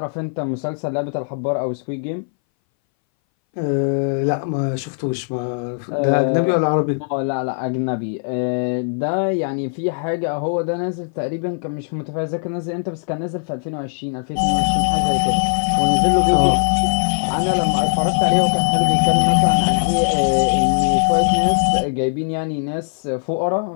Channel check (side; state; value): right; silent; 62 dB below the other